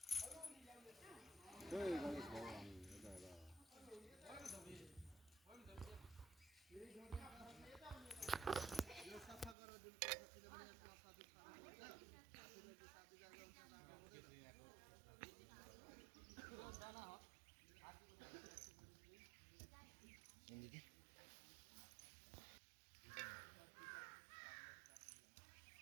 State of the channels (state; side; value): drops out; left; at 9.6 s